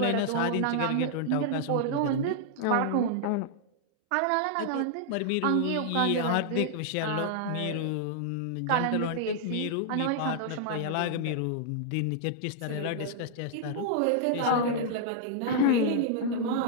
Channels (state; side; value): different; both; correlation -0.01